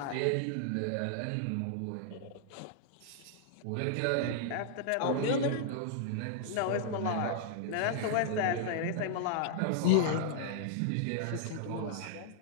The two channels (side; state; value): both; different; correlation -0.01